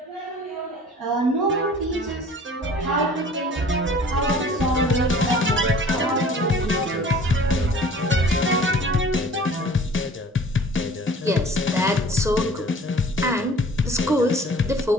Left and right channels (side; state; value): both; normal; correlation 0.48